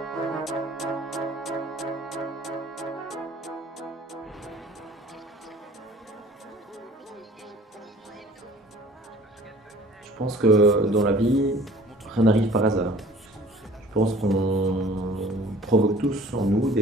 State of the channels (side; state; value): both; normal; correlation 0.49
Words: pense que dans la vie, rien n'arrive par hasard. Je pense qu'on provoque tous en nous